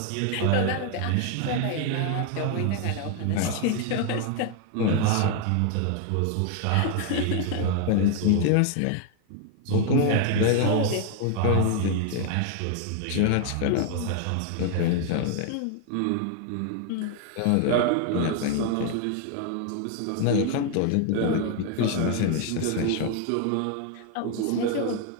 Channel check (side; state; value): both; different; correlation 0.00